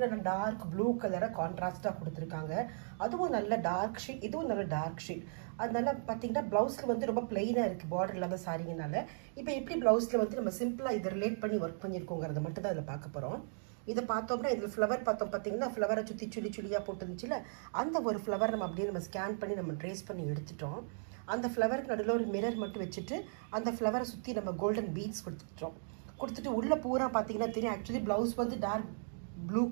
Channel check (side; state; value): left; silent; digital silence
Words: டார்க் ப்ளூ கலரை கான்ட்ராஸ்டாக கொடுத்துருக்காங்க. அதுவும் நல்ல டார்க் ஷீட், இதுவும் நல்ல டார்க் ஷீட். அதனால பார்த்தீங்கன்னா ப்ளவுஸில் வந்து ரொம்ப பிளெயினாக இருக்குது பார்டர் இல்லாத சாரிங்கனால. இப்போ எப்படி ப்ளவுஸில் வந்து நம்ம சிம்பிளாக இதை ரிலேட் பண்ணி ஒர்க் பண்ணியிருக்கோங்கிறத மட்டும் தான் இதில் பார்க்க போகிறோம். இதை பார்த்தோம்னா இதில் ஃப்ளவர் பார்த்தோம் பார்த்தீங்கன்னா ஃப்ளவரை சுற்றி சுழியாக போட்டுருந்துச்சுல அந்த ஒரு ஃப்ளவர் நம்ம அப்படியே நம்ம ஸ்கேன் பண்ணி நம்ம ட்ரேஸ் பண்ணி எடுத்துட்டோம். அந்த ஃப்ளவருக்கு நடுவில் ஒரு மிரர் மட்டும் வச்சுட்டு அந்த ஃப்ளவரை சுற்றி நம்ம கோல்டன் பீட்ஸ் கொடுத்துட்டு உள்ளே பூரா பார்த்தீங்கன்னா தெரியும். ஆக்சுவலி ப்ளவுஸ் வந்து டார்க் ப்ளூ